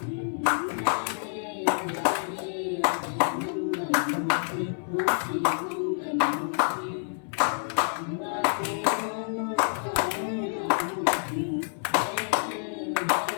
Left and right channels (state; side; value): silent; right; 59 dB below the other